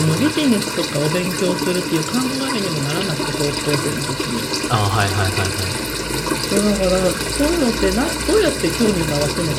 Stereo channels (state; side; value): identical; both; correlation 1.00